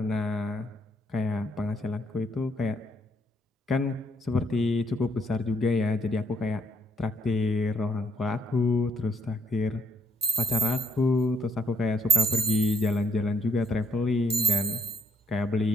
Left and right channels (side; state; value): both; normal; correlation 0.71